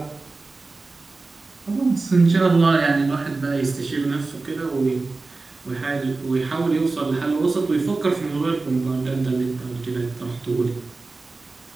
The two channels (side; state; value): left; quieter; 3.6 dB